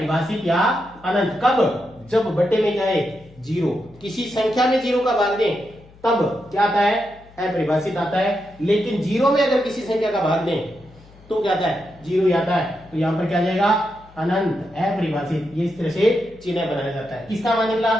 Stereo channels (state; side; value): noise; left; hum, 25 dB below the sound